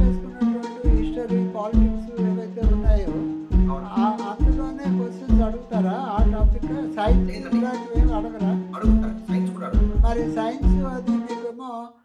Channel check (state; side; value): identical; both; correlation 1.00